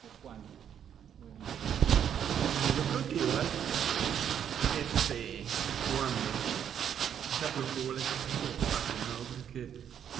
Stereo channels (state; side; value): quieter; left; 8.9 dB